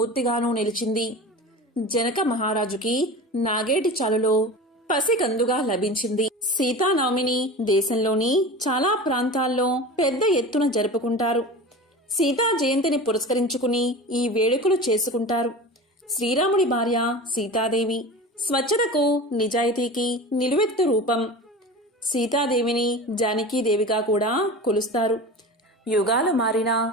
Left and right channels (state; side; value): normal; both; correlation 0.32